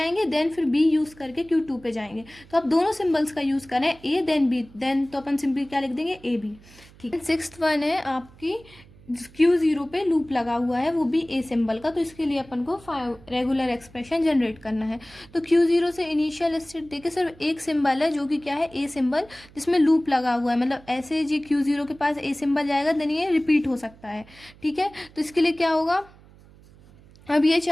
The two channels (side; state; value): right; noise; hum, 24 dB below the sound